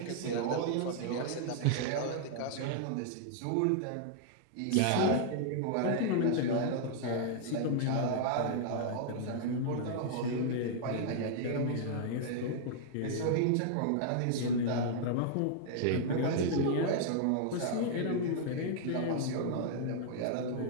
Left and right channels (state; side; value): different; both; correlation -0.01